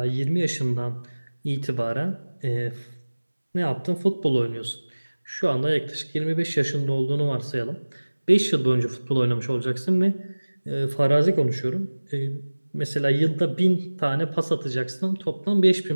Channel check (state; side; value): inverted; both; correlation -1.00